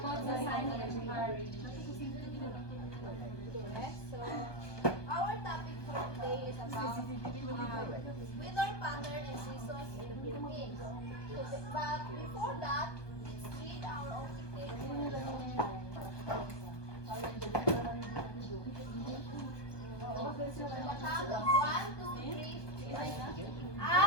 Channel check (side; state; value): right; late; 1.2 ms